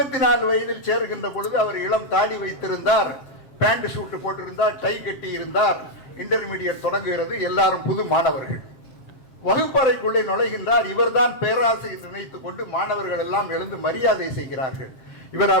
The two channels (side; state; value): right; late; 7.6 ms